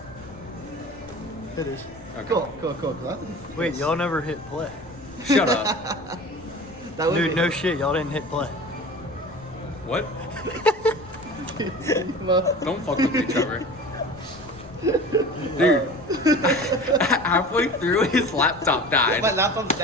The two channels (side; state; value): left; noise; rumble, 21 dB below the sound